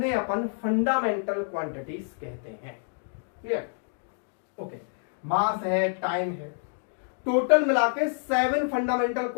अपन फंडामेंटल क्वांटिटीज कहते हैं। क्लियर? ओके, मास है, टाइम है, टोटल मिलाके 7 फंडामेंटल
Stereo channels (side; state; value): right; silent; 55 dB below the other